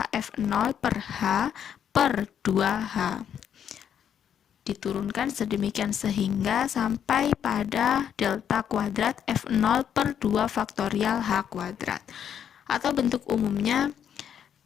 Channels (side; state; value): right; quieter; 8.8 dB